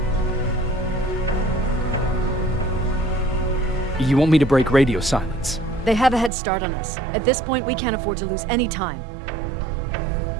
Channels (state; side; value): drops out; left; at 6.3 s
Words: You want me to break radio silence? They have a head start on us. At this point, we can't afford to lose any time.